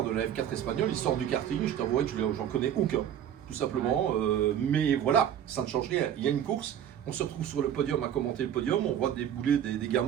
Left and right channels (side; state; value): left; quieter; 9.9 dB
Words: de la F4 espagnole, ils sortent du karting, je t'avouerai que j'en connais aucun, tout simplement. Mais voilà, ça ne change rien. Il y a une course, on se retrouve sur le podium à commenter le podium, on voit débouler des